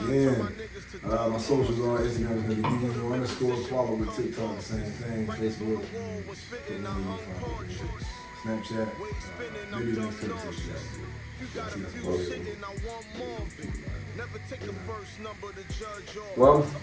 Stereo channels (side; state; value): both; identical; correlation 1.00